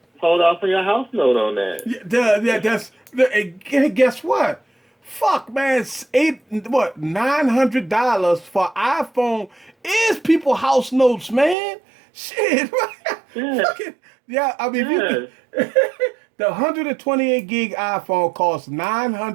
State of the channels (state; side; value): drops out; left; at 11.6 s